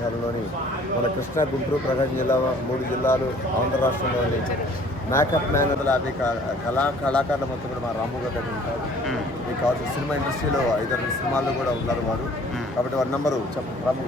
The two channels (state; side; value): normal; both; correlation 0.54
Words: మన కృష్ణా, గుంటూరు, ప్రకాశం జిల్లా 3 జిల్లాలు ఆంధ్ర రాష్ట్రంలోని మేకప్ మ్యాన్ 50 కళాకారుల మొత్తం కూడా మా రాము గారు దగ్గర ఉంటారు. మీకు కావాల్సిన సినిమా ఇండస్ట్రీలో 5-6 సినిమాల్లో కూడా ఉన్నారు వారు. కాబట్టి వారి నెంబరు చెప్పండి రాము